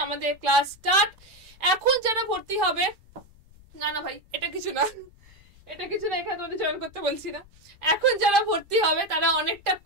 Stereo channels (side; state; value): left; noise; rumble, 26 dB below the sound